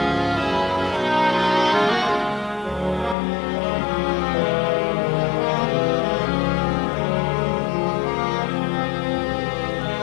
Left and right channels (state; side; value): drops out; right; at 3.2 s